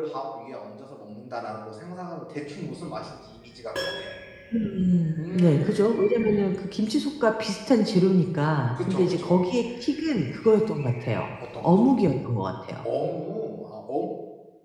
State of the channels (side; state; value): both; identical; correlation 1.00